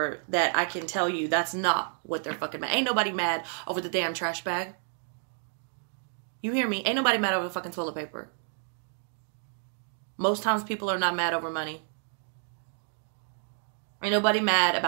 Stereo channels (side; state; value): left; silent; 58 dB below the other